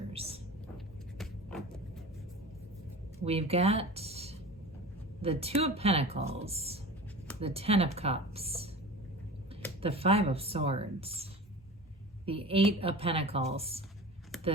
We've got the Two of Pentacles, the Ten of Cups, the Five of Swords, the Eight of Pentacles,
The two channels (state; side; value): normal; both; correlation 0.35